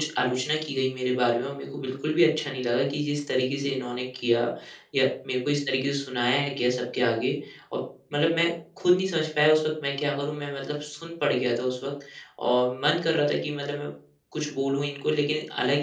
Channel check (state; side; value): identical; both; correlation 1.00